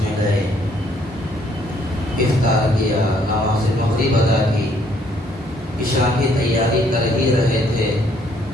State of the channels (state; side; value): normal; both; correlation 0.66